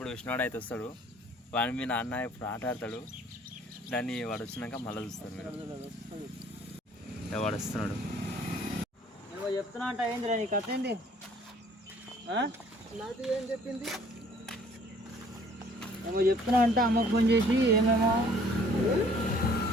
విష్ణువాడు అయితే వస్తాడు, వాడి మీ నాన్న ఇప్పుడు ఆట ఆడతాడు. దాన్ని వాడు వచ్చినాక మళ్ళీ చూస్తారు మీరు. వాడు వస్తున్నాడు. ఏమో చెప్తున్నా అంట. ఏందిరా నీ కథ ఏంది? నాది ఏం చెప్పింది? ఏమో చెప్తున్నా అంట. అమ్మకు ఫోన్ చేసి ఏమేమో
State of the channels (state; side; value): normal; both; correlation 0.57